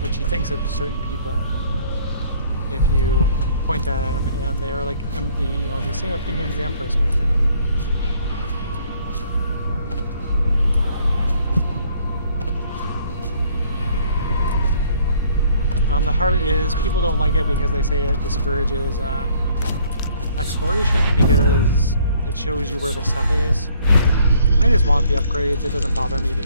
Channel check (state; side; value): inverted; both; correlation -0.61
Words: she thinks of certain people if you point at them, and they are like the same opinions the Empress might have. The heart is, people don't like it because they say it discourages exploration because it shows you where the stuff is. I just want the upgrades. It doesn't bother me to